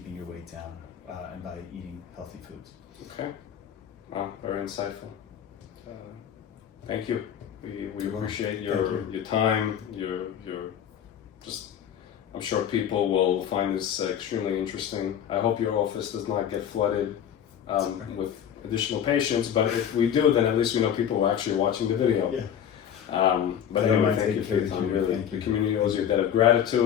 your weight down and by eating healthy foods. Okay. Wow, very insightful. Thank you. We appreciate your time. Your just. I'm sure people will find this extremely interesting. I hope your office does not get flooded with additional patients, but if we do, then at least we know people are actually watching the video. Yeah. But anyway, thank you for your time. Really, the community owes you a debt of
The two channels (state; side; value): quieter; right; 9.1 dB